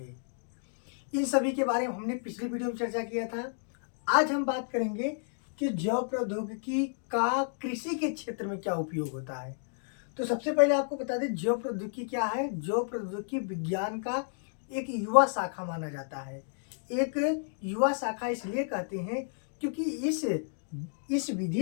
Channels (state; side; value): silent; right; digital silence